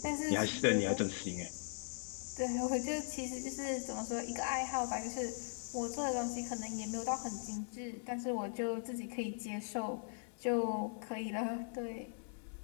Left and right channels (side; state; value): right; silent; digital silence